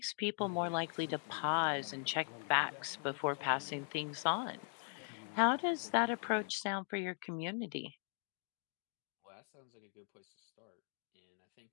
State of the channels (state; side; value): silent; right; 51 dB below the other